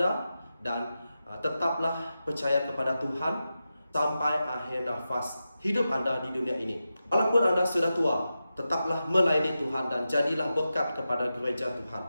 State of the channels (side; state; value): both; inverted; correlation -0.91